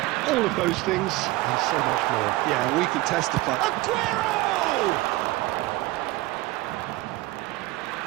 all of those things and so much more. Yeah, we can testify. Aguero!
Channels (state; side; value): quieter; left; 19.4 dB